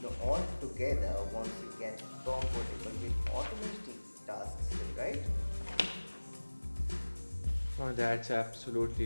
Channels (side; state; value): both; inverted; correlation -1.00